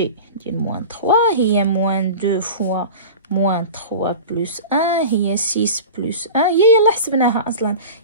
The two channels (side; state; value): both; inverted; correlation -0.32